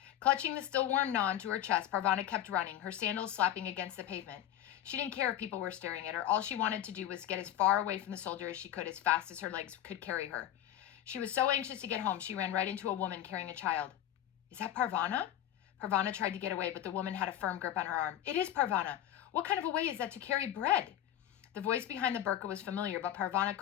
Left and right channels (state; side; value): quieter; right; 11.7 dB